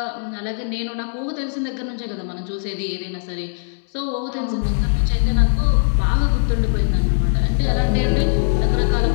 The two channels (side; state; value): right; silent; digital silence